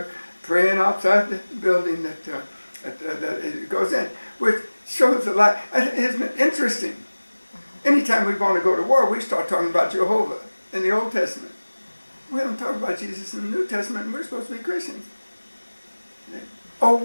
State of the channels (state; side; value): inverted; both; correlation -1.00